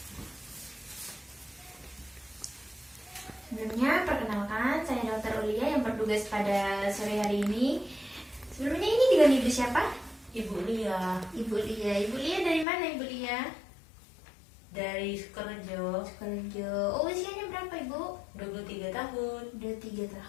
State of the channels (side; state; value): right; drops out; at 12.7 s